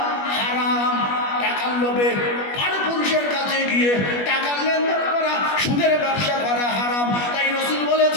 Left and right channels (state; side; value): late; right; 21 ms